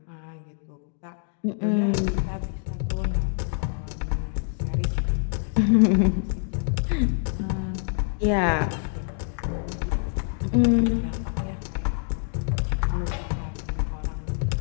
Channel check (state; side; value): silent; right; 56 dB below the other